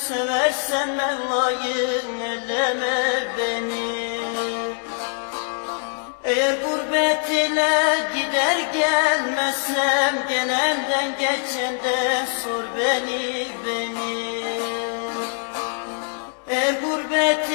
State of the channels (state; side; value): silent; right; 55 dB below the other